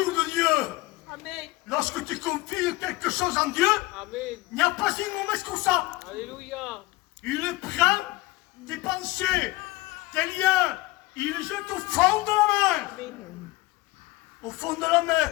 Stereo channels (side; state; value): right; quieter; 20.5 dB